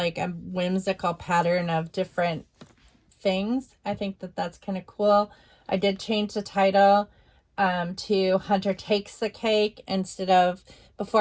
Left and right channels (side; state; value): both; identical; correlation 1.00